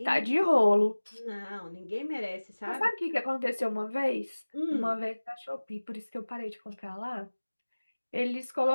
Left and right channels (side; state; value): both; inverted; correlation -1.00